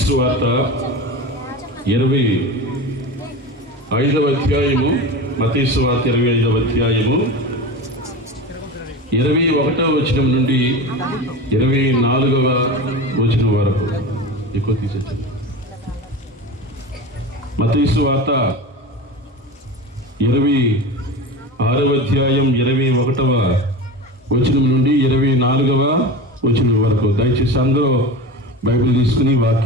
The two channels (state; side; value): normal; both; correlation 0.29